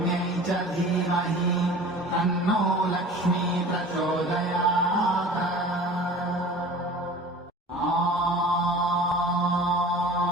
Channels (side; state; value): both; normal; correlation 0.41